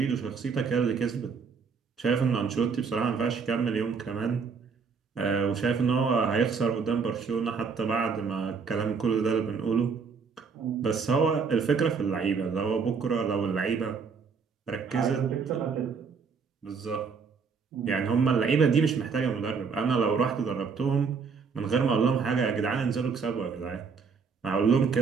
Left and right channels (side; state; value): left; quieter; 5.5 dB